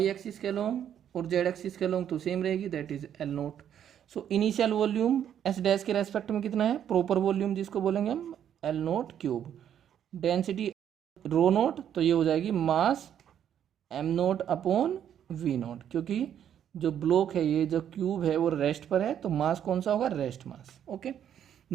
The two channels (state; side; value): quieter; left; 9.6 dB